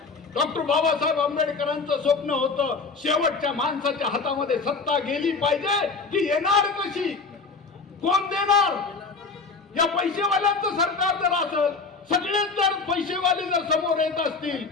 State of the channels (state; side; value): quieter; right; 4.4 dB